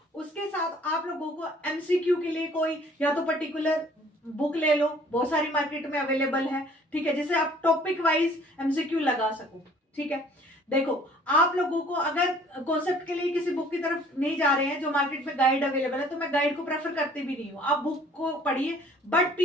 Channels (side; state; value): both; normal; correlation 0.55